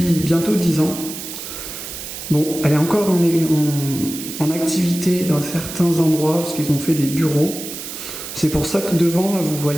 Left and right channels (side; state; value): right; noise; hiss, 9 dB below the sound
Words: bientôt 10 ans. Bon, elle est encore en activité dans certains endroits parce qu'ils ont fait des bureaux. C'est pour ça que devant là, vous